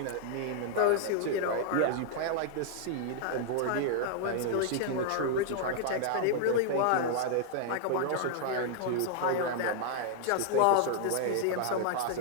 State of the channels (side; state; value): both; different; correlation -0.01